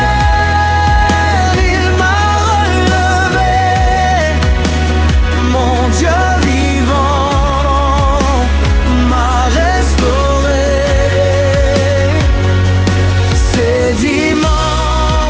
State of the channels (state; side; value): identical; both; correlation 1.00